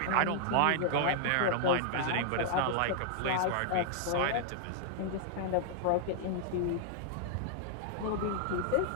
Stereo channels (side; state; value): both; different; correlation -0.01